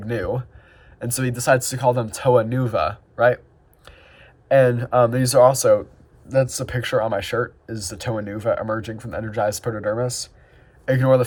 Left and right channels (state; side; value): identical; both; correlation 1.00